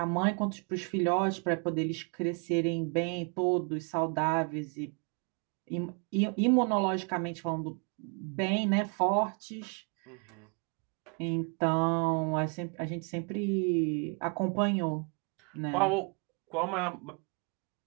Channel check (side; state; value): left; quieter; 36.7 dB